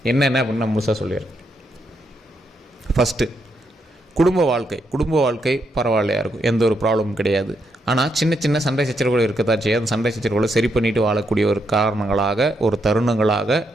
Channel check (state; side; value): normal; both; correlation 0.79